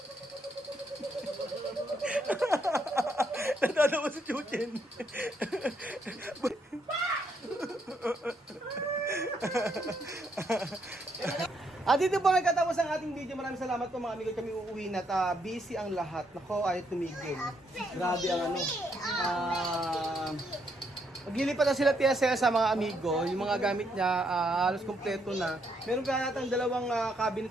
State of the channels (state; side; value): normal; both; correlation 0.74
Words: Natatawa si Jujen. At dito po nagkatapos ang ating video. Maraming salamat po mga amigo. Kami uuwi na at busy ang lahat. Nako, ayaw tumigil. Grabe ang maglilipat na sila Tia Cesa sa mga amigo. Yung mga gamit niya, halos kompleto na. Meron ka natang dalawang